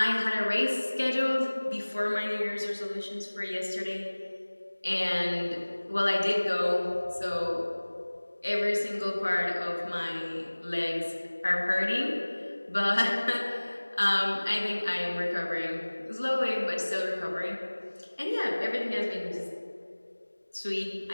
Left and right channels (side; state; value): both; inverted; correlation -1.00